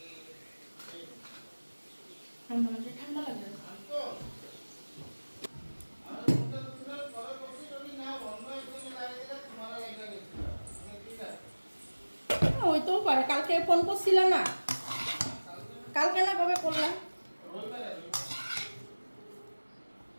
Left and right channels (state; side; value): inverted; both; correlation -1.00